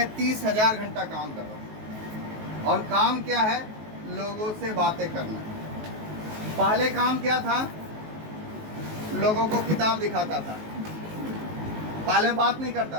30,000 घंटा काम कर रहा हूँ। और काम क्या है? लोगों से बातें करना। पहले काम क्या था? लोगों को किताब दिखाता था। पहले बात नहीं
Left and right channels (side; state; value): left; late; 19 ms